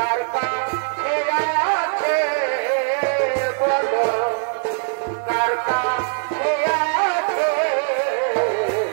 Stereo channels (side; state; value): left; silent; 65 dB below the other